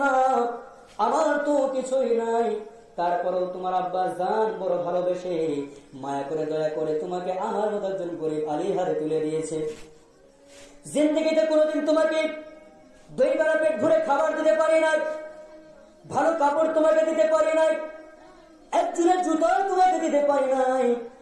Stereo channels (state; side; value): identical; both; correlation 1.00